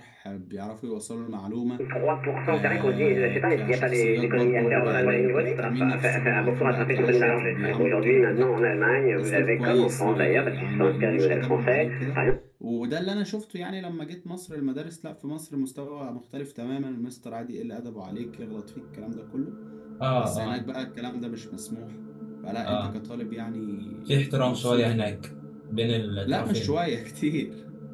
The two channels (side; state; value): both; identical; correlation 1.00